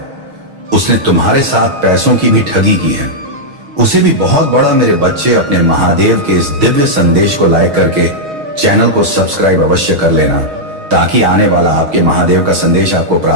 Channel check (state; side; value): late; left; 6.4 ms